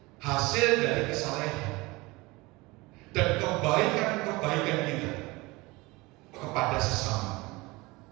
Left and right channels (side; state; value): left; quieter; 22.9 dB